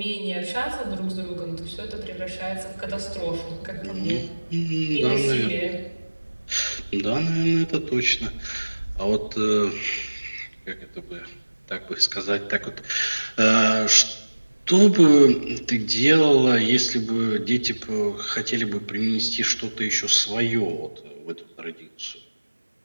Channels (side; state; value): both; inverted; correlation -1.00